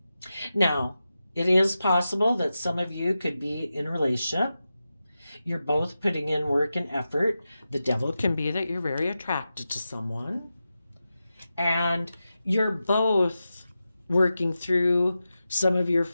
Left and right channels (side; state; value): both; inverted; correlation -0.92